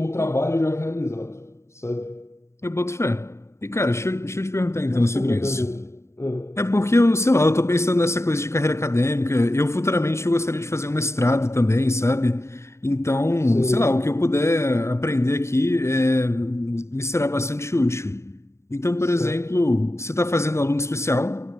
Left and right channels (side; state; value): right; late; 0.13 ms